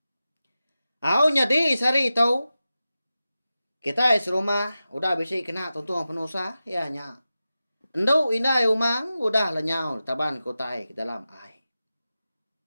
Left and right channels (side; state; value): both; inverted; correlation -0.93